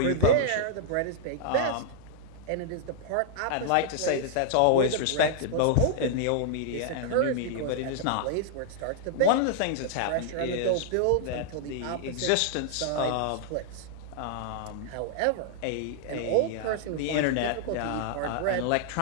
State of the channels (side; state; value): both; different; correlation -0.01